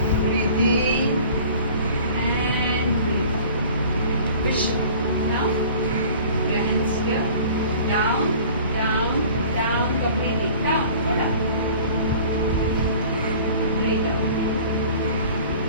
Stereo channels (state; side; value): inverted; both; correlation -0.46